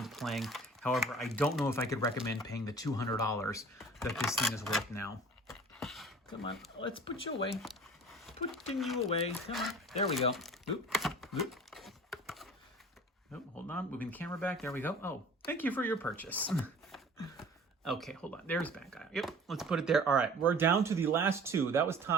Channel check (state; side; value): normal; both; correlation 0.45